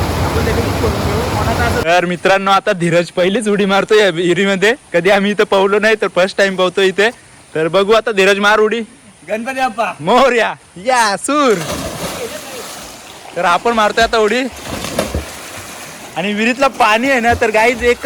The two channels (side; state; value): both; identical; correlation 1.00